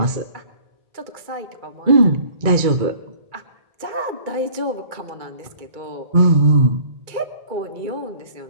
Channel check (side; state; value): left; late; 2.2 ms